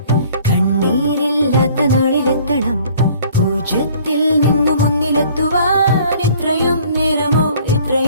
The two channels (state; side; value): inverted; both; correlation -0.54